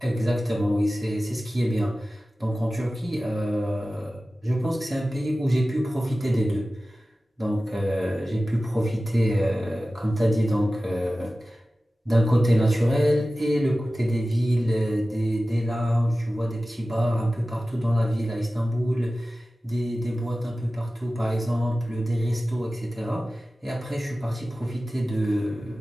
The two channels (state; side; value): normal; both; correlation 0.96